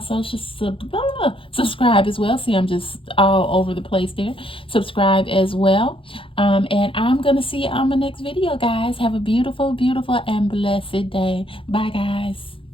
subscribe as well. See, I'm just all over the place there. Subscribe as well. And I'm going to see you on my next video, guys. Have a beautiful, beautiful, and blessed day. Bye, guys.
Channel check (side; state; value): right; late; 0.26 ms